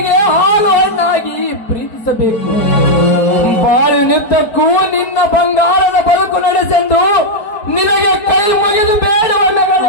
ಹಾಲು ಹಣ್ಣಾಗಿ ಪ್ರೀತಿಸಬೇಕು. ಬಾಳಿನುದ್ದಕ್ಕೂ ನಿನ್ನ ಬಂಗಾರದ ಬದುಕು ನಡೆಸೆಂದು ನಿನಗೆ ಕೈ ಮುಗಿದು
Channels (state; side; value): late; right; 4.6 ms